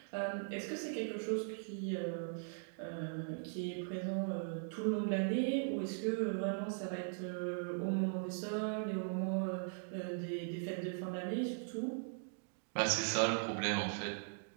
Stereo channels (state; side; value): silent; left; digital silence